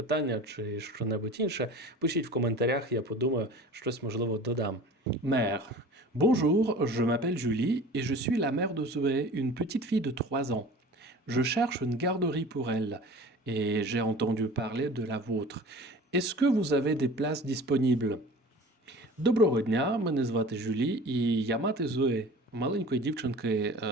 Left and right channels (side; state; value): both; normal; correlation 0.41